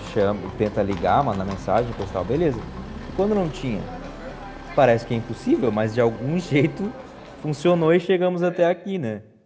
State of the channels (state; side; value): identical; both; correlation 1.00